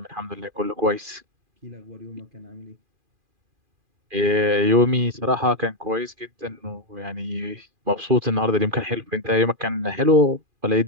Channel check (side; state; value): left; late; 2.4 ms